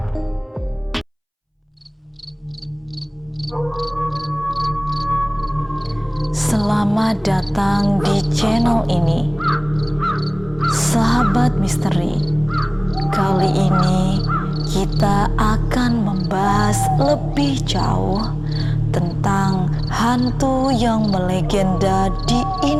Selamat datang di channel ini, Sahabat Misteri. Kali ini kita akan membahas lebih jauh tentang hantu yang melegenda di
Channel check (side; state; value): both; identical; correlation 1.00